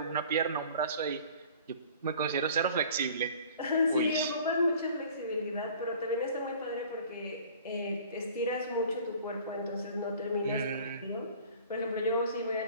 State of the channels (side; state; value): both; inverted; correlation -0.48